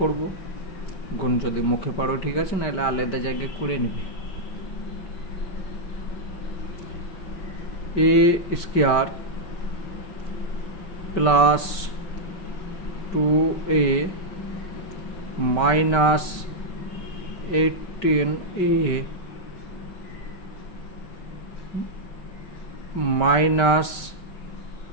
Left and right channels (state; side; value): late; right; 5.2 ms